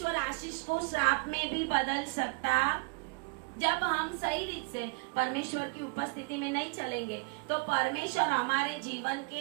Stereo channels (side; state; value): left; quieter; 31.3 dB